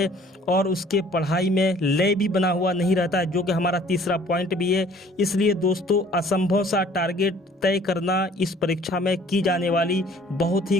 और उसके पढ़ाई में लय भी बना हुआ नहीं रहता है, जो कि हमारा तीसरा पॉइंट भी है। इसलिए दोस्तों असंभव सा टारगेट तय करना इस परीक्षा में की जाने वाली बहुत ही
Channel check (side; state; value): both; normal; correlation 0.54